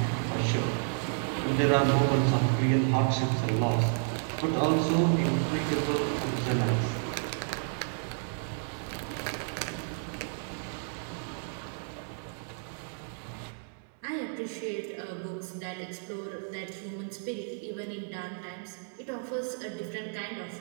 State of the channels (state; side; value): silent; left; 57 dB below the other